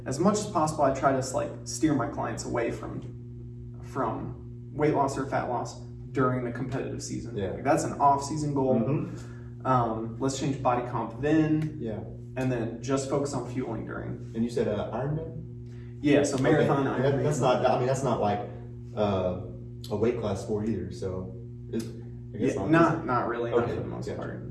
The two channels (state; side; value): identical; both; correlation 1.00